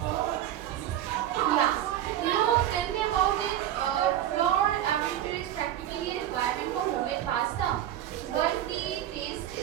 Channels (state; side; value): quieter; left; 12.0 dB